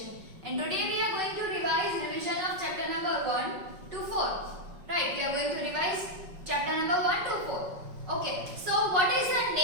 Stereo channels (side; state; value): left; late; 5.4 ms